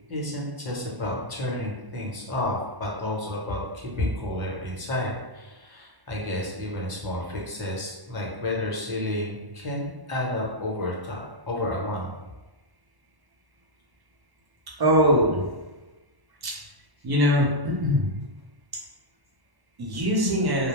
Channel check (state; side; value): late; left; 1.1 ms